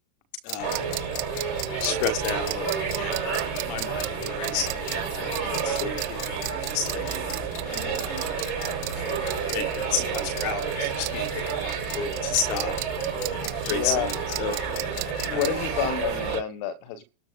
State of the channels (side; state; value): right; late; 36 ms